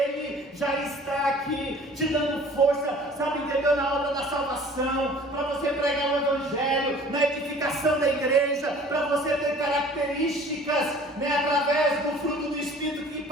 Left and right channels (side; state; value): both; normal; correlation 0.49